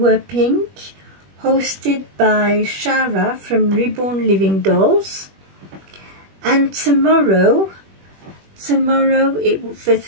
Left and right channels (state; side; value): late; left; 21 ms